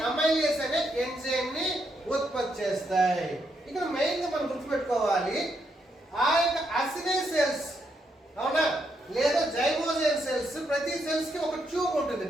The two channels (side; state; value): both; normal; correlation 0.78